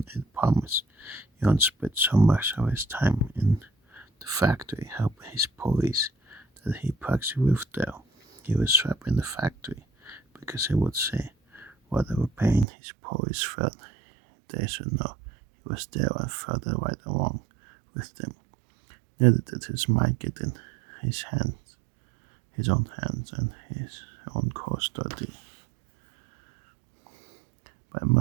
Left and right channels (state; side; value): drops out; left; at 12.7 s